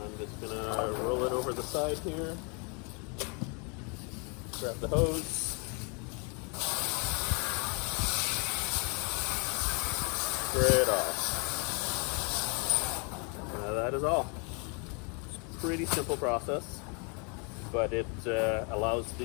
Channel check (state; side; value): quieter; right; 34.5 dB